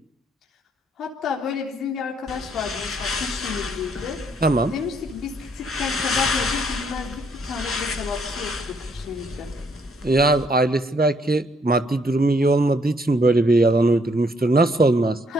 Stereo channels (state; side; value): normal; both; correlation 0.69